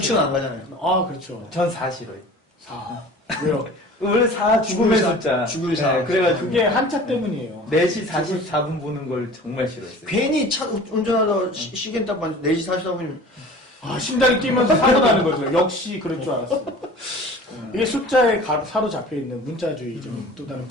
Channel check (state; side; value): normal; both; correlation 0.42